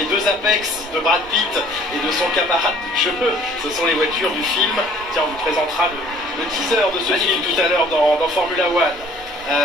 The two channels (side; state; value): right; noise; hum, 29 dB below the sound